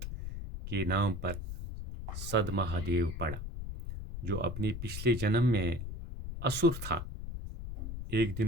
کے نام پر صدمہ دیو پڑا، جو اپنے پچھلے جنم میں اسور تھا. ایک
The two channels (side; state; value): left; noise; rumble, 7 dB below the sound